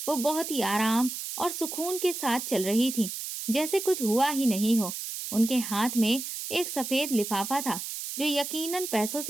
वो बहुत ही आराम और सुकून के साथ चल रही थी, जैसे कुछ हुआ ही नहीं हो। उनके हाथ में एक सफेद लिफाफा था जो यकीनन पैसों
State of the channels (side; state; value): right; noise; hiss, 6 dB below the sound